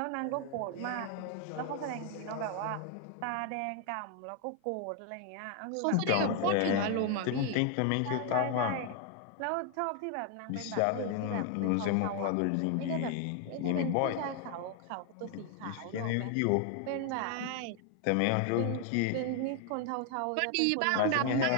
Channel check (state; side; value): different; both; correlation 0.00